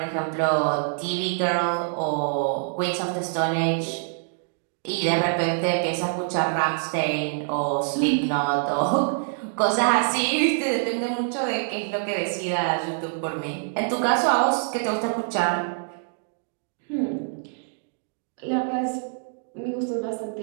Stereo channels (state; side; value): silent; left; digital silence